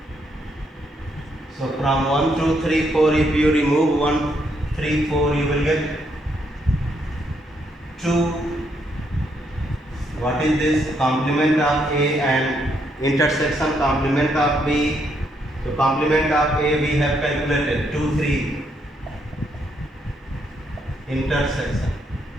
So from 1, 2, 3, 4, if you remove 1, 3, 4, you will get 2. What is this? Complement of A and intersection complement of B. So complement of A we have calculated 2, 3. Intersection.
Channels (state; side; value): normal; both; correlation 0.75